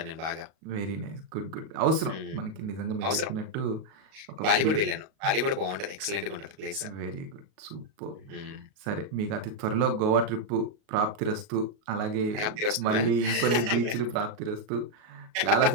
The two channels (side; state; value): left; late; 37 ms